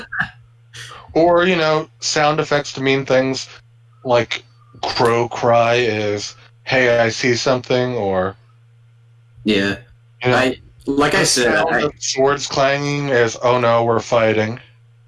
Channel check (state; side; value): identical; both; correlation 1.00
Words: Or sound effects to mean things like crow cry is, hey, I see something, or yeah. Like I said, swords clanging is, oh no, we're fighting.